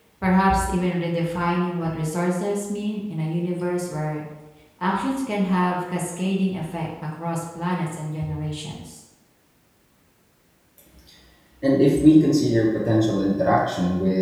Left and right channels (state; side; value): identical; both; correlation 1.00